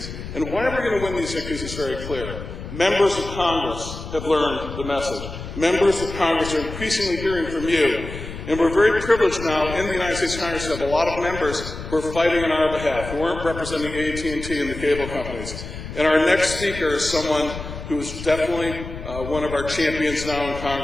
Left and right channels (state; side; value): noise; left; rumble, 10 dB below the sound